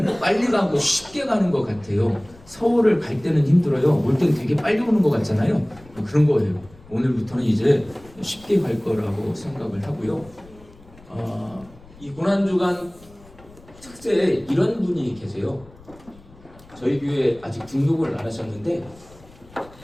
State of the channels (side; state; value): left; noise; rumble, 23 dB below the sound